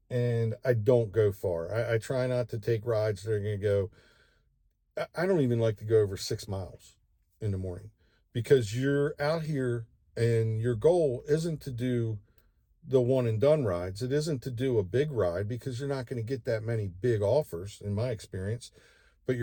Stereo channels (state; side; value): identical; both; correlation 1.00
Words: and I don't go far. I try not to take rides that are going to go, I don't even like to go over 6 miles in the morning, because you're out here and your goal isn't to do the one and done rides. It isn't to do a big ride, because you're not going to get that many big offers in my experience. But